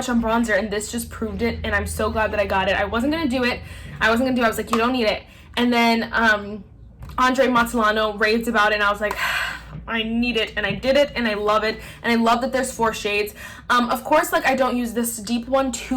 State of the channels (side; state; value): both; identical; correlation 1.00